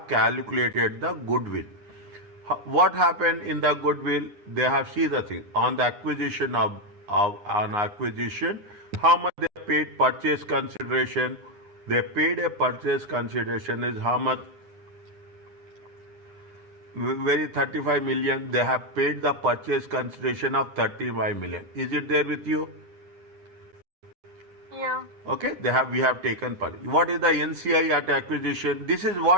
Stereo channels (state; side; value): late; left; 9.7 ms